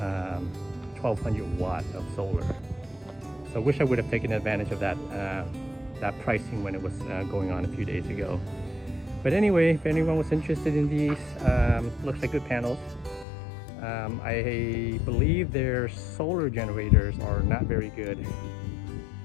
1200 watt of solar. So I wish I would have taken advantage of that that pricing when it was going on a few days ago. But anyway, if anyone was interested in these, looks like good panels. I believe their solar generators are not very good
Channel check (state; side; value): drops out; right; at 13.2 s